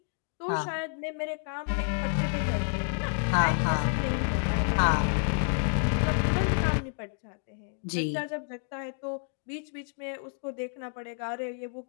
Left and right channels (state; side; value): silent; right; 57 dB below the other